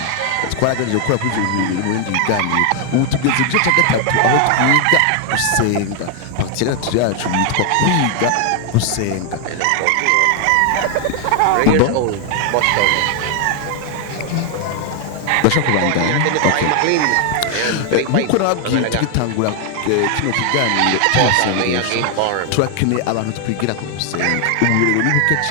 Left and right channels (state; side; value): different; both; correlation 0.00